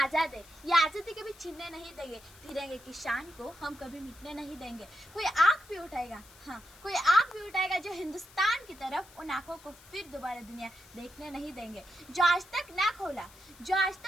हैं, ये आज़ादी कभी छीनने नहीं देंगे। तिरंगे की शान को हम कभी मिटने नहीं देंगे। कोई आँख भी उठाएगा, हाँ कोई आँख भी उठाएगा जो हिंदुस्तान की तरफ, उन आँखों को फिर दोबारा दुनिया देखने नहीं देंगे। जो आज तक ना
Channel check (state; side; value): noise; left; hiss, 22 dB below the sound